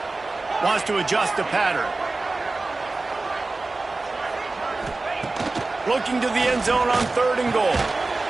Wants to adjust the pattern. Looking to the end zone on 3rd and goal.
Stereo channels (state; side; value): quieter; left; 3.4 dB